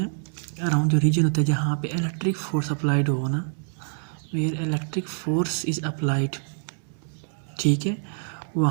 अराउंड जो रीजन होता है जहाँ पे इलेक्ट्रिक फोर्स अप्लाइड हो ना, where electric force is applied, ठीक है,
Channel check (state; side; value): silent; left; digital silence